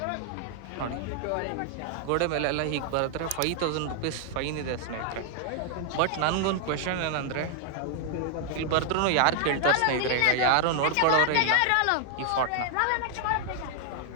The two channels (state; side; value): different; both; correlation 0.00